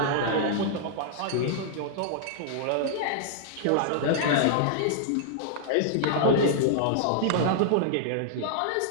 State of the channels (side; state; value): both; different; correlation -0.01